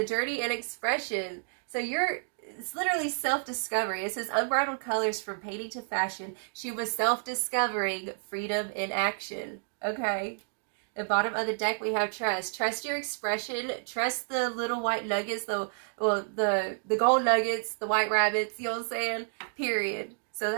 journey and expression. So it's literally self-discovery. It says unbridled colors from painting to fashion. She was self-discovering freedom in action. Okay. The bottom of the deck we have trust. Trust your expression. Trust the little white nuggets, the gold nuggets, the white rabbits, you know what I'm saying? Period. So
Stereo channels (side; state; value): left; silent; digital silence